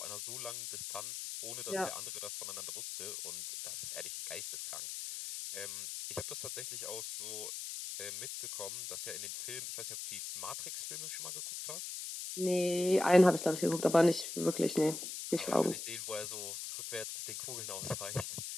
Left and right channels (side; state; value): left; noise; hiss, 6 dB below the sound